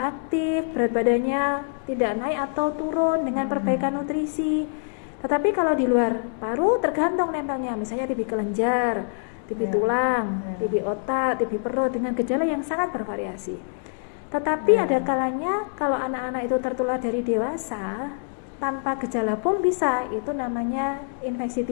aktif, berat badannya tidak naik atau turun dengan perbaikan nutrisi. Tetapi kalau di luar paru tergantung nempelnya, misalnya TB kelenjar, TB tulang, TB otak, TB perut dengan gejala yang sangat bervariasi. Tetapi ada kalanya kalau anak-anak itu tertular dari dewasa tanpa gejala pun bisa, itu namanya infeksi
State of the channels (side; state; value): right; silent; digital silence